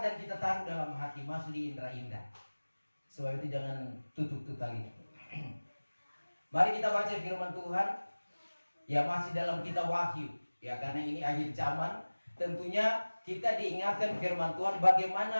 dan kita taruh dalam hati, masuk di indera indah. Sebab itu jangan tutup tali. Mari kita baca firman Tuhan. Ya, masih dalam kitab Wahyu, ya, karena ini akhir zaman. Tentunya kita diingatkan firman Tuhan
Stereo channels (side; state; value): both; inverted; correlation -1.00